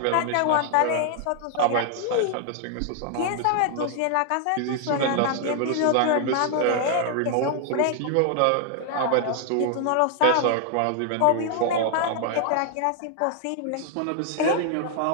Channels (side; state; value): both; different; correlation 0.00